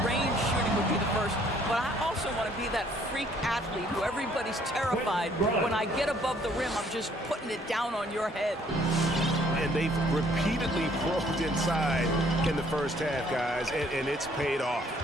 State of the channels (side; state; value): both; normal; correlation 0.62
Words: range shooting would be the first. But I also want to be that freak athlete who everybody's terrified. When I get above the rim, I'm just putting it down on your head. And they've repeatedly probed inside in the first half, guys, and it's paid off.